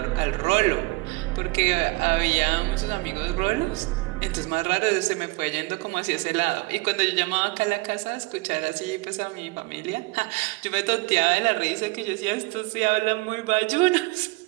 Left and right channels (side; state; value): left; quieter; 24.4 dB